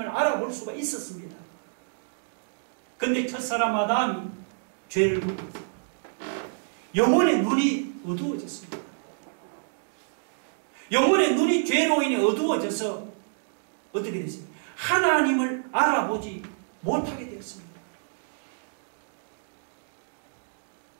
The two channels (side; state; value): left; silent; digital silence